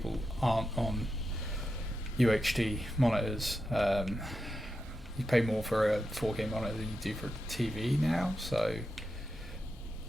aren't on UHD monitors. You pay more for a 4K monitor than you do for TV now, so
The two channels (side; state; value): both; normal; correlation 0.88